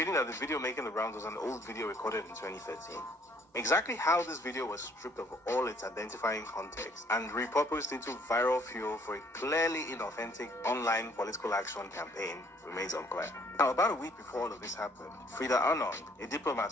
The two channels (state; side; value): normal; both; correlation 0.62